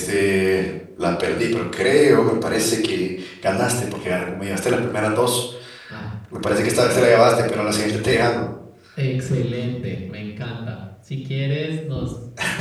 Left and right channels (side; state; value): both; identical; correlation 1.00